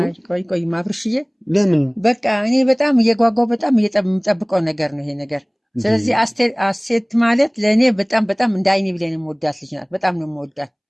አይቆይም አብርሽዬ። ለምን? በቃ እኔ በጣም እየጓጓው በጣም የምጠብቀው ነገር ነው ይሄ ነገር። ስለዚህ ሀሴት ማለት ለእኔ በጣም በጣም እንደ አይኔ ብሌን የምወዳት ልጅ ናት። በጣም ነው የምወዳት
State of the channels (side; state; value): both; identical; correlation 1.00